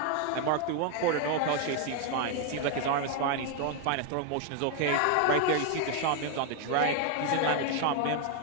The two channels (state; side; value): different; both; correlation 0.00